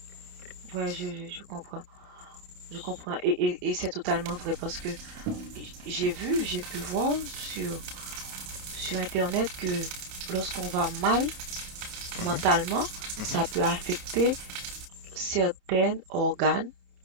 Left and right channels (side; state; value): left; late; 28 ms